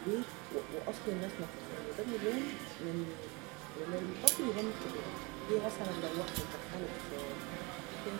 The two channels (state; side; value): quieter; left; 27.8 dB